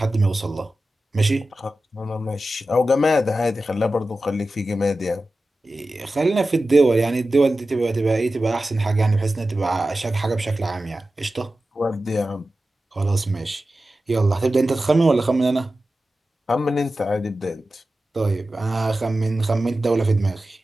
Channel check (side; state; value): both; normal; correlation 0.94